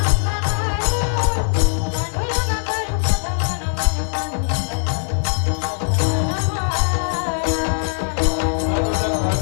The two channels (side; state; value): right; silent; digital silence